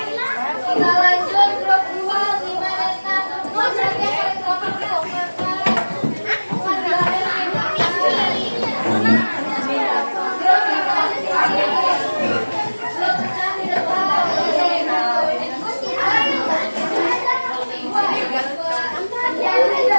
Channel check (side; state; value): both; inverted; correlation -1.00